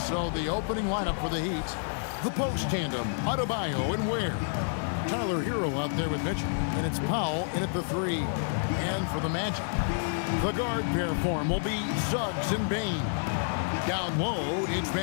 So the opening lineup for the Heat, the post tandem, Adebayo and Ware. Tyler Hero out there with Mitchell, and it's Powell in at the 3. And for the Magic, the guard pair form will be Suggs and Bain. Down low, it's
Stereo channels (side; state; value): right; silent; digital silence